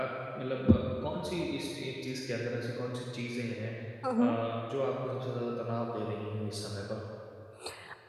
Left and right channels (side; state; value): both; identical; correlation 1.00